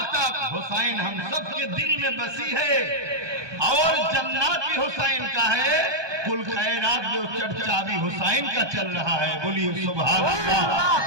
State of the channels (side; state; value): left; late; 1.2 ms